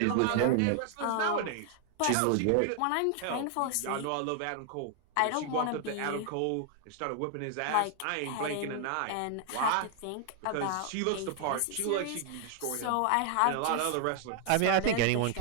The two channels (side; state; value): both; different; correlation 0.00